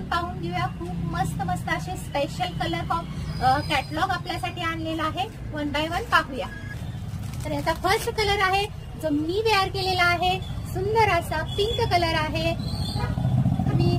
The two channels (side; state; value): both; identical; correlation 1.00